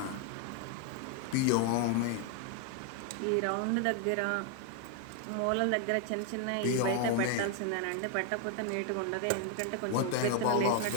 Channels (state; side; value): different; both; correlation 0.00